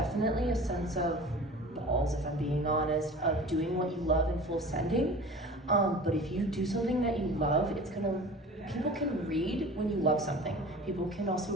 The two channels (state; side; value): normal; both; correlation 0.40